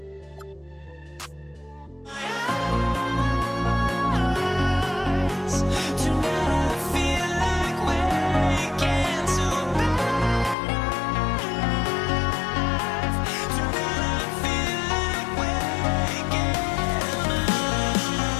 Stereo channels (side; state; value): right; drops out; at 10.6 s